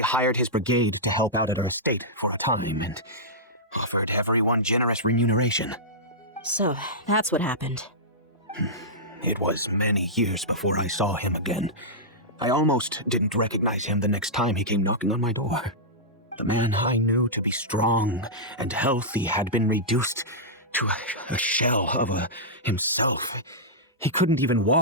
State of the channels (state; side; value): normal; both; correlation -0.13